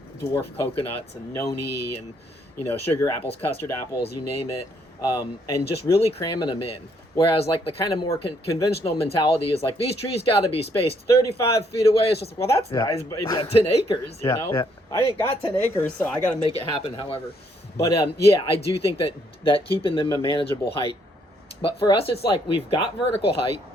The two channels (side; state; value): both; normal; correlation 0.70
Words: dwarf coconuts and noni and, you know, sugar apples, custard apples, you name it, and just really cramming them in. Whereas like the kind of more conventional mentality is like, these trees got to be spaced 35 feet away. It's just like, well, that's nice, but if you have 10 acres, you know, I ain't got 10 acres, so I got to make it happen however. But yeah, I do think that keeping them a manageable height. But for us, it's like we've got vertical height.